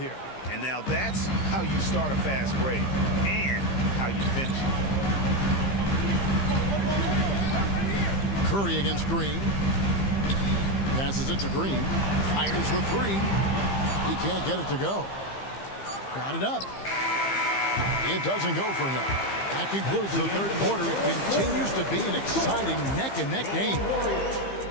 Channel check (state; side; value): late; right; 15 ms